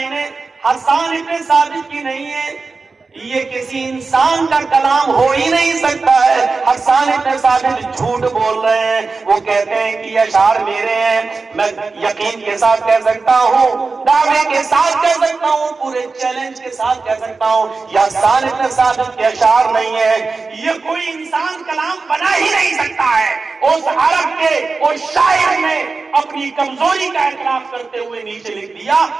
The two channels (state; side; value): quieter; left; 4.2 dB